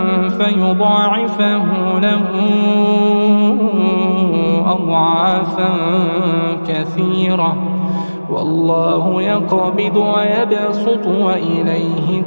فيضاعفه له أضعافا كثيرة والله يقبض ويبسط وإليه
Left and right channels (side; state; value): both; inverted; correlation -1.00